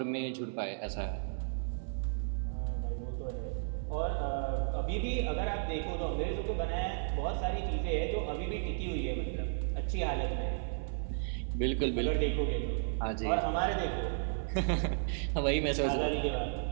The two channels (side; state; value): left; silent; 55 dB below the other